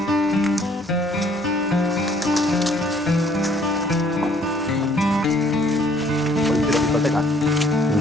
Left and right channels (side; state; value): both; normal; correlation 0.61